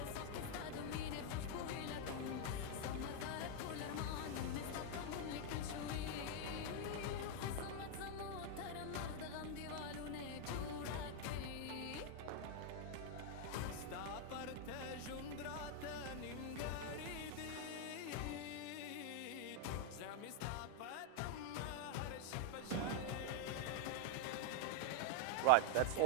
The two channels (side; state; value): both; different; correlation 0.00